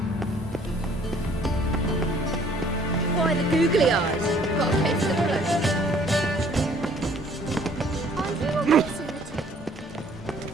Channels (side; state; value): both; normal; correlation 0.58